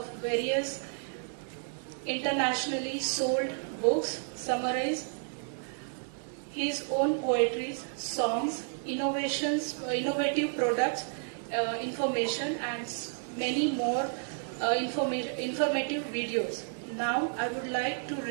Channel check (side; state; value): left; silent; 57 dB below the other